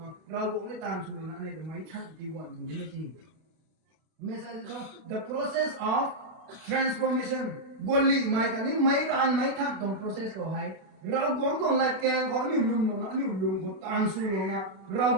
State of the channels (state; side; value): late; left; 31 ms